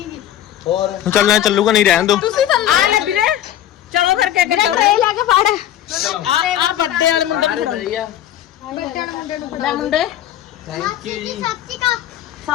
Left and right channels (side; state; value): right; quieter; 11.8 dB